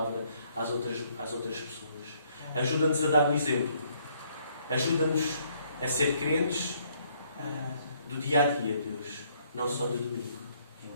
às outras pessoas. Ajuda-nos a dar o exemplo. Ajuda-nos a ser crentes do dia a dia, Deus, não só do domingo.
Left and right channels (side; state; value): both; inverted; correlation -0.67